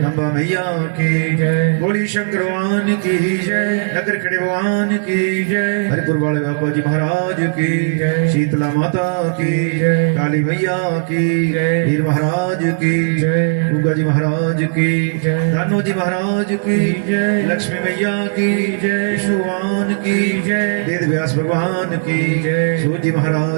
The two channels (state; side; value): silent; left; digital silence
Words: अम्बा मैया की जय बोली शंकर भगवान की जय नगर खड़े भगवान की जय हरिपुर वाले बाबा जी महाराज की जय शीतला माता की जय काली मैया की जय वीर महाराज की जय उगा जी महाराज की जय दानो जी महाराज की जय लक्ष्मी मैया की जय विष्णु भगवान की जय वेद व्यास भगवान की जय सूर्य जी